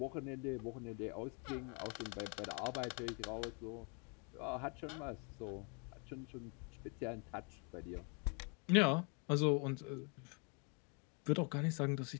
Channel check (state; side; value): quieter; right; 36.4 dB